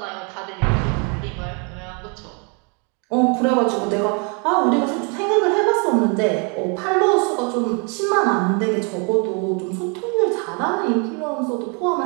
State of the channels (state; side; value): quieter; left; 35.4 dB